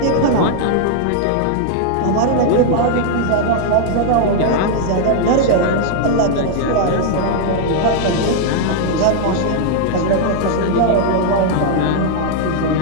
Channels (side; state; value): both; different; correlation 0.00